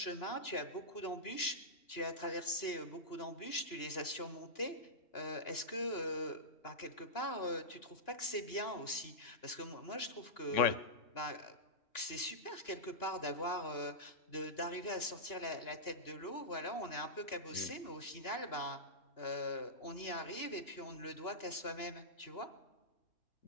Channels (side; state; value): right; late; 2.9 ms